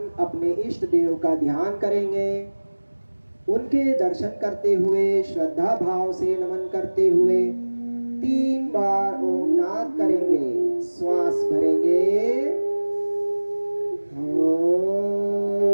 अपने इष्ट देव का ध्यान करेंगे। उनके दर्शन करते हुए, श्रद्धा भाव से नमन करते हुए 3 बार ओम नाद करेंगे। श्वास भरेंगे।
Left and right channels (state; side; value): inverted; both; correlation -1.00